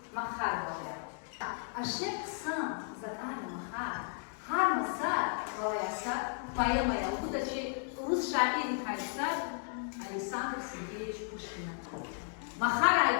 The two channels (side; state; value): right; silent; 55 dB below the other